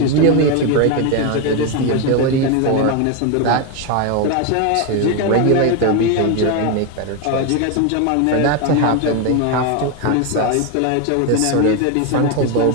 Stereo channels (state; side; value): different; both; correlation 0.02